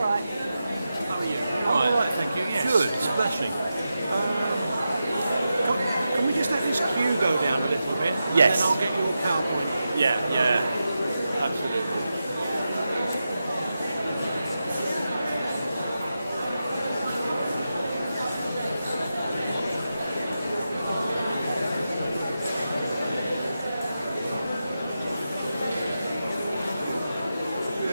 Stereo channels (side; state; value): both; inverted; correlation -0.90